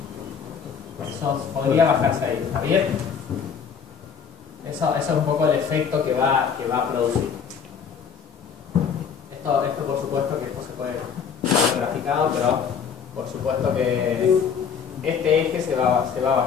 Eso podría bajarse ahí, ¿está bien? Eso es un poco el efecto que va a producir. Esto por supuesto que esto se puede ver graficado, pero por supuesto que este eje se va a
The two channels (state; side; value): quieter; right; 6.8 dB